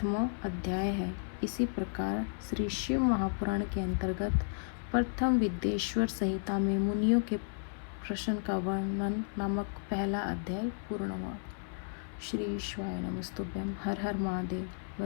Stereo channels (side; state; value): right; silent; 55 dB below the other